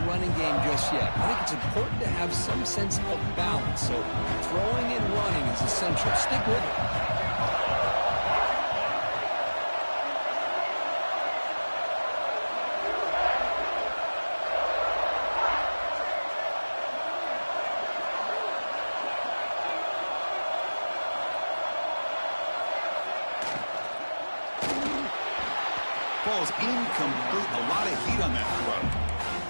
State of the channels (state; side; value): inverted; both; correlation -1.00